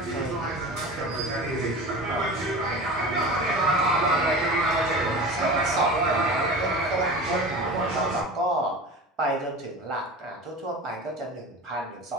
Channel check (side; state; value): both; normal; correlation 0.34